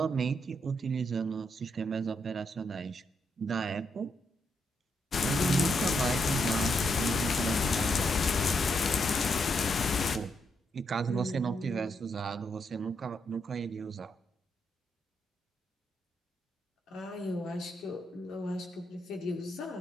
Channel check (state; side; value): normal; both; correlation 0.79